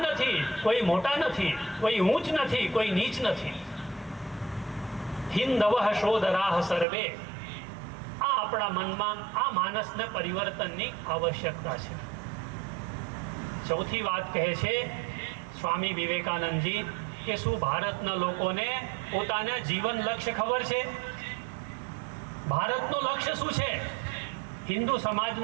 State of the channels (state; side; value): drops out; left; at 6.9 s